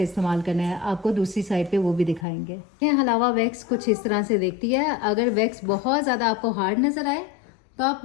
इस्तेमाल करना है आपको दूसरी साइड पे वो भी दिखाएंगे। ये हलावा वैक्स कुछ इस तरह से देखती है। अगर वैक्स बहुत ज़्यादा आपको हार्ड नज़र आए तो आप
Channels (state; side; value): drops out; right; at 2.2 s